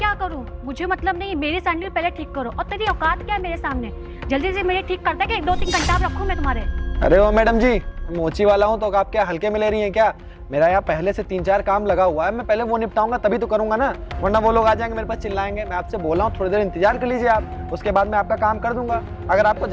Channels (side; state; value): both; identical; correlation 1.00